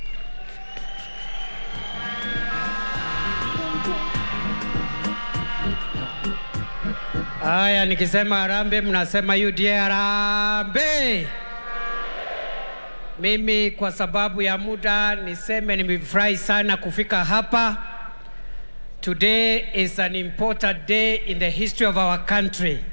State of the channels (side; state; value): both; inverted; correlation -1.00